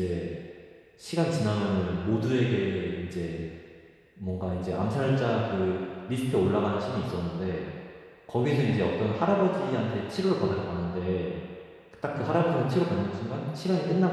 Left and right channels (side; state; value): both; identical; correlation 1.00